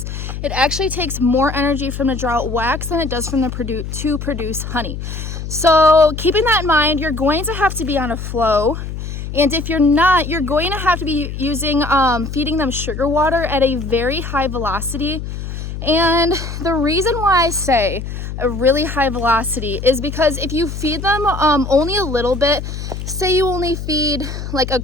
It actually takes more energy from to draw out wax than it does from to produce honey. So keeping that in mind, you're going to have to be on a flow. And if you're not, you're going to have to be using feeding them sugar water at a very high velocity. And the reason why I say a really high velocity is because if you feed them only a little bit, say you only feed like a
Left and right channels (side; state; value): left; noise; hum, 7 dB below the sound